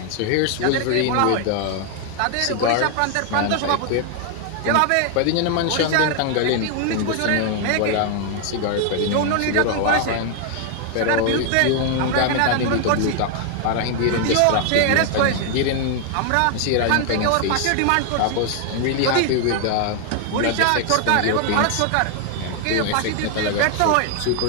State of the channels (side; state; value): both; different; correlation 0.00